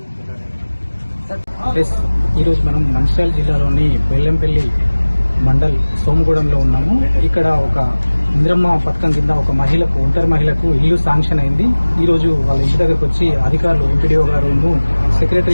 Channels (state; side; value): inverted; both; correlation -1.00